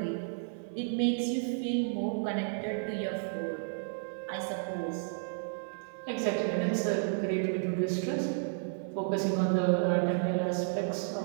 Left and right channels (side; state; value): left; silent; 56 dB below the other